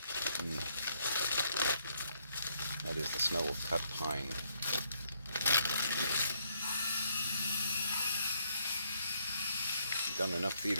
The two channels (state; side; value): inverted; both; correlation -0.72